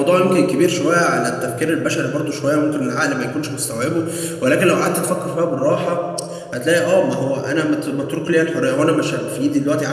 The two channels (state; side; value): identical; both; correlation 1.00